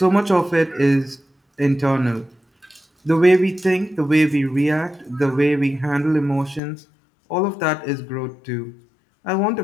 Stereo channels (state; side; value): drops out; right; at 6.6 s